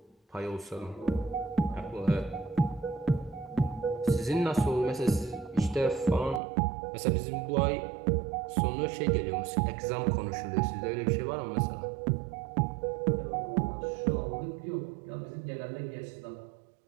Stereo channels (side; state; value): left; drops out; at 6.4 s